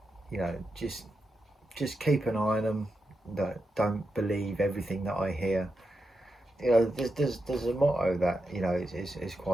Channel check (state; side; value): normal; both; correlation 0.87